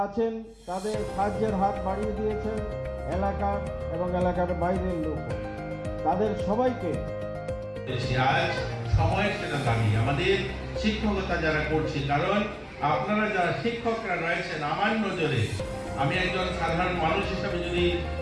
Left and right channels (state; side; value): identical; both; correlation 1.00